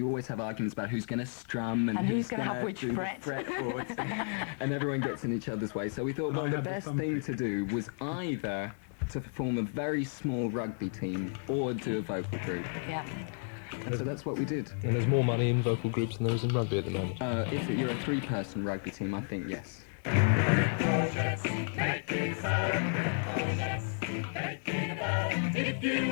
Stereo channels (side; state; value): right; silent; 56 dB below the other